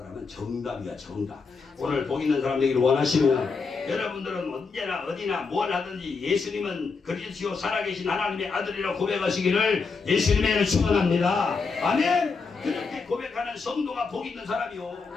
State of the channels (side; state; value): right; quieter; 4.7 dB